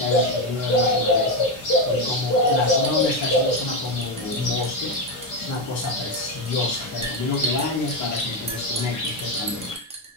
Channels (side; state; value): both; normal; correlation 0.11